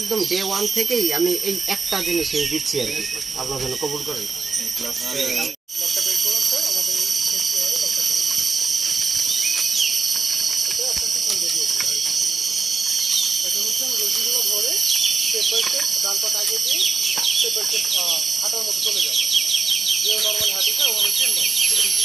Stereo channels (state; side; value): quieter; left; 4.6 dB